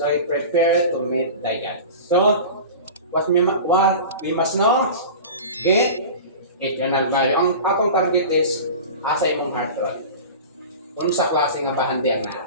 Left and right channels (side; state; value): both; inverted; correlation -0.34